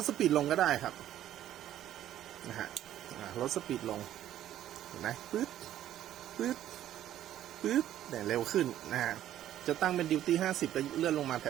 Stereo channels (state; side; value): quieter; left; 12.0 dB